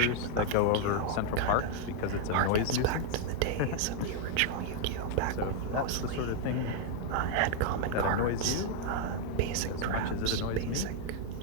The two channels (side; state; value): both; different; correlation 0.00